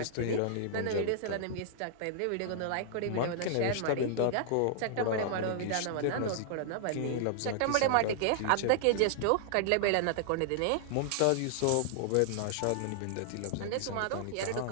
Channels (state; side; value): different; both; correlation -0.01